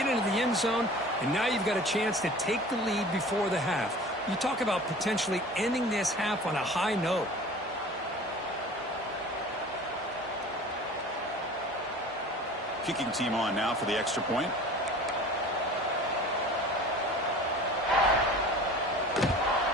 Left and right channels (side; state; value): both; normal; correlation 0.42